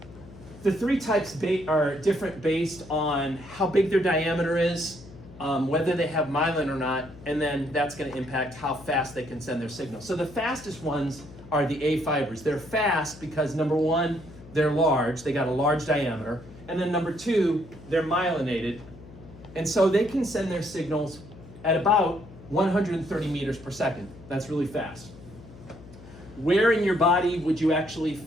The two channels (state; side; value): noise; left; hum, 18 dB below the sound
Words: the 3 types are different based on how big their diameter is, whether they have myelin or not, and then that's going to impact how fast they can send their signal. So the fastest ones are the A fibers. They're fast because number 1, they're large, they got a large diameter, and then number 2, they're myelinated, and so they can send their signals at about 130 meters per second. That's really fast. Where in your body would you actually